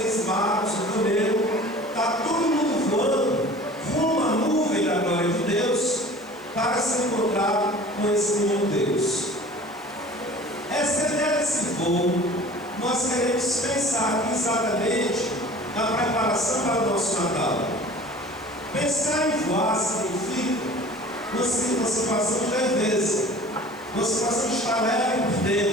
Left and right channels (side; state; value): left; noise; hiss, 28 dB below the sound